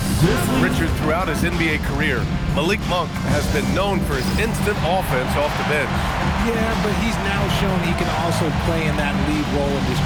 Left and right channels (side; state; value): both; identical; correlation 1.00